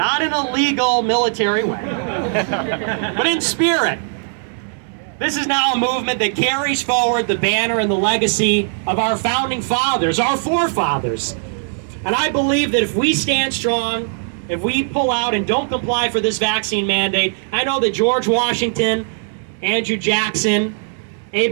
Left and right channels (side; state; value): left; silent; digital silence